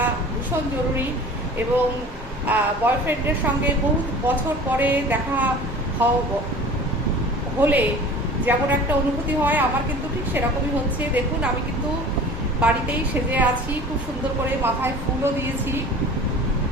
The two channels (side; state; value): both; normal; correlation 0.42